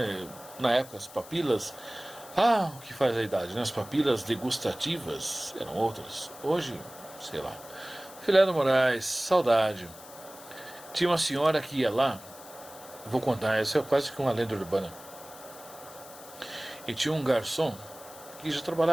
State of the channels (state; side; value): noise; left; hiss, 18 dB below the sound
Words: na época as papilas. Ah, o que faz a idade, né? As papilas degustativas eram outras. Hoje, sei lá. Filé do Moraes, saudade. Tinha uma senhora que ia lá, vou contar, essa é quase que uma lenda urbana. E tinha um garçom que já